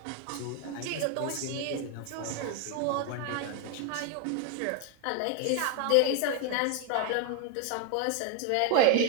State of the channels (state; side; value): different; both; correlation 0.00